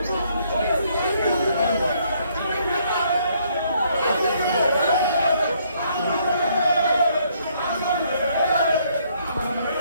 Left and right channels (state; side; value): inverted; both; correlation -0.68